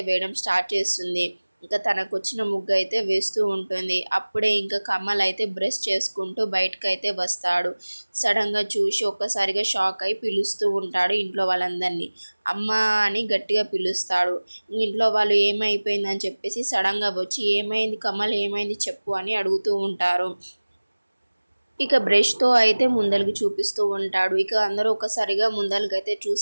వేయడం స్టార్ట్ చేస్తుంది. ఇంకా తనకు వచ్చిన ముగ్గు అయితే వేస్తూ ఉంటుంది. అప్పుడే ఇంకా కమల్ అయితే బ్రష్ చేసుకుంటూ బయటకైతే వస్తాడు. సడన్గా చూసి ఒక్కసారిగా షాక్ అయి పిలుస్తూ ఉంటాడు ఇంట్లో వాళ్ళందరినీ. అమ్మ అని గట్టిగా పిలుస్తాడు. ఇంట్లో వాళ్ళు ఏమైపోయిందని చెప్పేసి సడన్గా వచ్చి ఏమైంది కమల్ ఏమైంది చెప్పు అని అడుగుతూ ఉంటారు. ఇక బ్రష్తో అయితే ముందలకి చూపిస్తూ ఉంటాడు. ఇక అందరూ ఒకసారిగా ముందలకైతే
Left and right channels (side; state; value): both; inverted; correlation -1.00